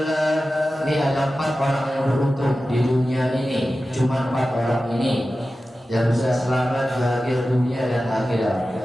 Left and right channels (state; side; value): normal; both; correlation 0.94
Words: ini ada 4 orang yang beruntung di dunia ini. Cuma 4 orang ini yang bisa selamat bahagia dunia dan akhirat.